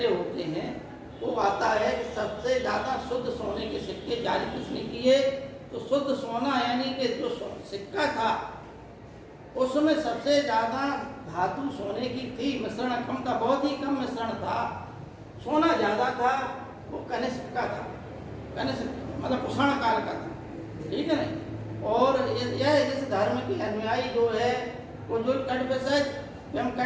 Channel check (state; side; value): identical; both; correlation 1.00